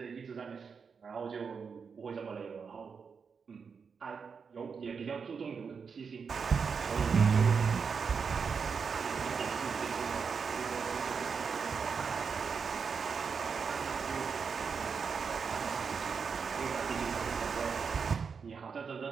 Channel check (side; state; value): left; quieter; 5.8 dB